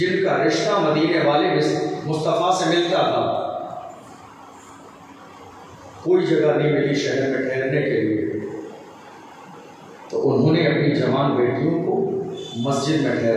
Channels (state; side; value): identical; both; correlation 1.00